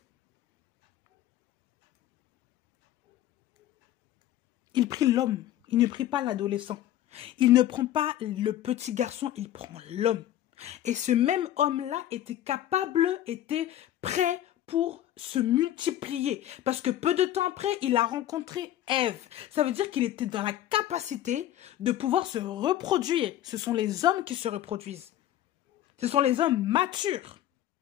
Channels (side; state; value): right; quieter; 12.5 dB